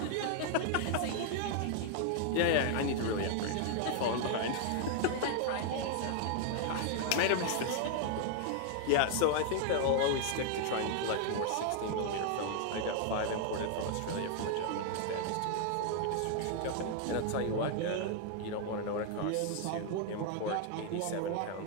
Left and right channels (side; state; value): both; different; correlation 0.00